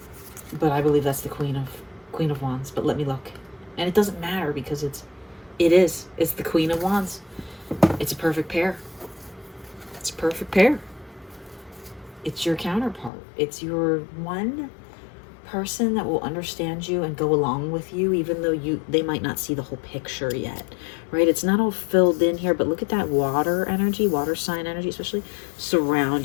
But I believe that's the Queen of Wands. But let me look. And it doesn't matter because it's the Queen of Wands. It's a perfect pair. It's a perfect pair. It's your counterpart. It's your one person that will understand you and go along with you, even though they might not see the whole picture yet, right? It's not all filled in here, but look at that water energy, water sign energy, especially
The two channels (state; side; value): drops out; right; at 13.1 s